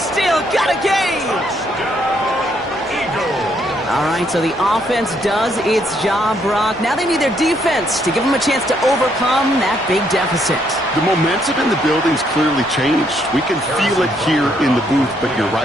got a game. All right, so the offense does its job, Brock. Now they need their defense to give them a chance to overcome that big deficit. The momentum in the building's clearly changed. We can feel it here in the booth, but you're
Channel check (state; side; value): normal; both; correlation 0.72